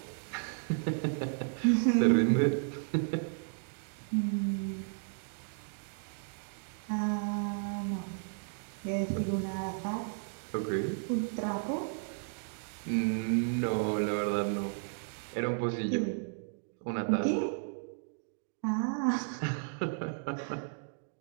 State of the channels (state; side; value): silent; left; digital silence